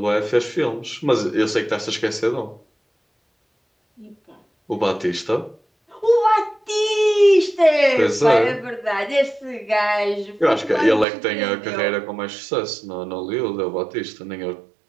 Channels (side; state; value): left; drops out; at 11.1 s